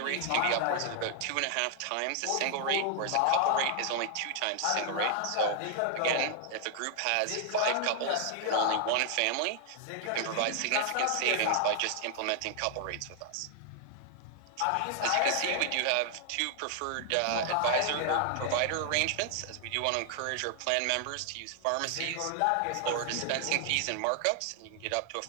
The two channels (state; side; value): different; both; correlation 0.00